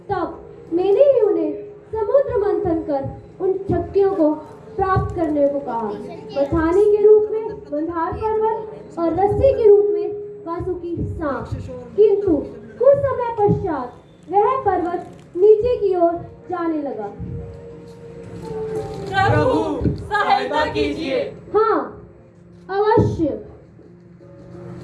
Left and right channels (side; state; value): both; identical; correlation 1.00